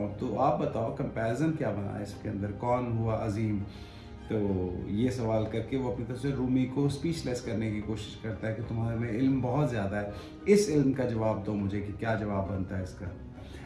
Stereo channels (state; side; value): identical; both; correlation 1.00